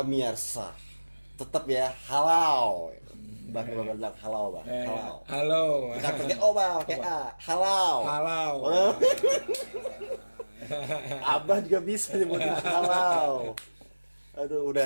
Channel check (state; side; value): inverted; both; correlation -1.00